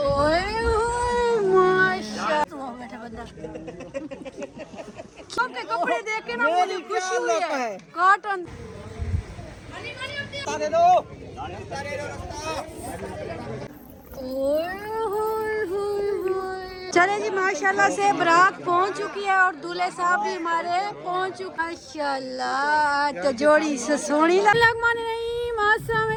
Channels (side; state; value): both; identical; correlation 1.00